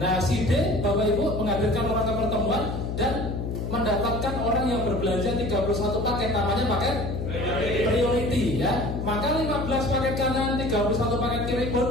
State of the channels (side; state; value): left; noise; hum, 3 dB below the sound